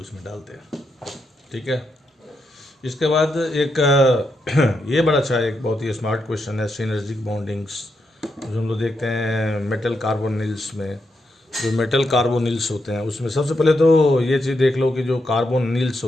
इसमें डालते हैं, ठीक है। इसके बाद एक ये बड़ा अच्छा एक बहुत ही स्मार्ट क्वेश्चन है, सिनर्जिक बॉन्डिंग्स, जो हम लोग देखते हैं मेटल कार्बोनिल्स में। जो मेटल कार्बोनिल्स होते हैं उसमें सबसे पहले तो ये चीज़ देख लो कि जो कार्बोनिल्स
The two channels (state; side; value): normal; both; correlation 0.82